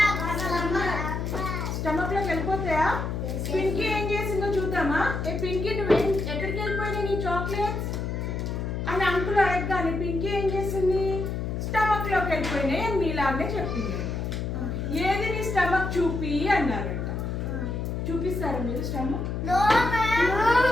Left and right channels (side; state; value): left; noise; hum, 3 dB below the sound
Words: పింకీ ఏం చేసిందో చూద్దామా? ఏ పింకీ నువ్వేం ఎక్కడికి వెళ్ళిపోయినాయి నీ చాక్లెట్స్ అని అంకుల్ అడగగానే పింకీ ఏం చేసింది? స్టమక్ లోకి వెళ్ళిపోయినాయి అని మీలాగే చెప్పింది. ఏది నీ స్టమక్ చూపి అన్నారంట. చూపిస్తారా మీరు స్టమక్?